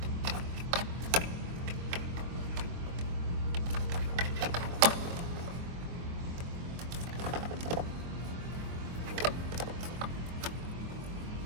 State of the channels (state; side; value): late; left; 23 ms